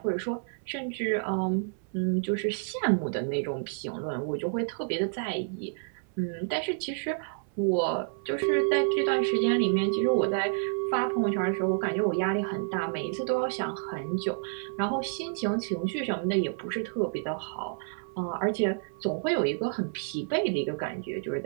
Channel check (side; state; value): left; silent; 58 dB below the other